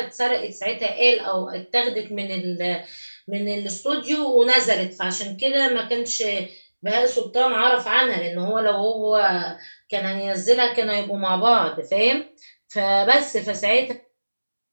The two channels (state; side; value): inverted; both; correlation -1.00